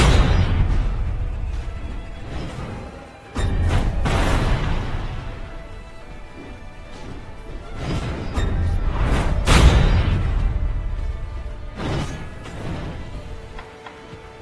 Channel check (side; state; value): both; identical; correlation 1.00